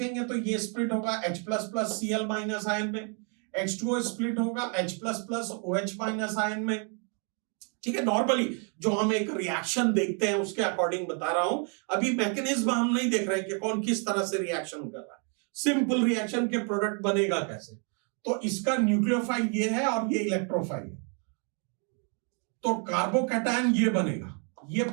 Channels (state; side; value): quieter; left; 39.2 dB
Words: तो ये स्प्लिट होगा H++ Cl माइनस आयन में, H2O स्प्लिट होगा H++ OH माइनस आयन में। ठीक है, नॉर्मली जो हम एक रिएक्शन देखते हैं उसके अकॉर्डिंग बता रहा हूं, अभी मैकेनिज्म हम नहीं देख रहे कि कौन किस तरह से रिएक्शन कर रहा है, सिंपल रिएक्शन के प्रोडक्ट बनेगा कैसे। तो इसका न्यूक्लियोफाइल ये है और ये इलेक्ट्रोफाइल है, तो कार्बोकैटायन ये बनेगा, ये